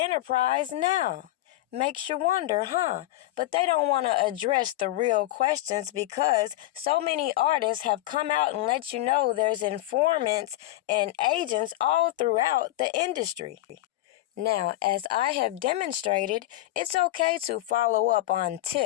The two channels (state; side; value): quieter; right; 16.0 dB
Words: now? Makes you wonder, huh? But they don't want to address the real questions because so many artists have come out and let you know there's informants and agents all throughout the industry. Now, as I have demonstrated, it's okay to follow up on